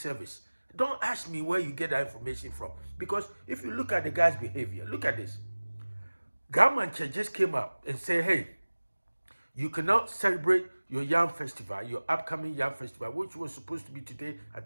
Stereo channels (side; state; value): both; inverted; correlation -1.00